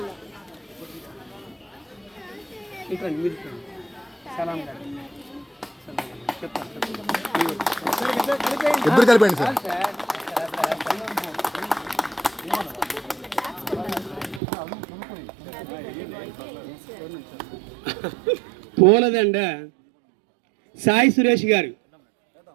ఇద్దరు కలిపండి సార్. పూలదండ సాయి సురేష్ గారు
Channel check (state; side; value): drops out; left; at 14.4 s